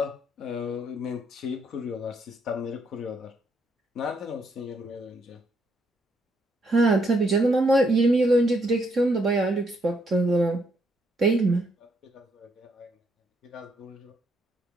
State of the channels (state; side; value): normal; both; correlation 0.74